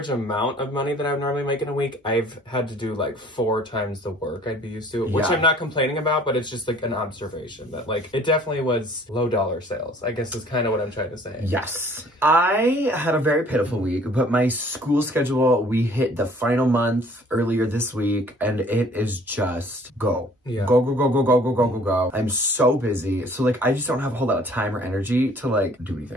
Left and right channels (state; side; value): normal; both; correlation 0.54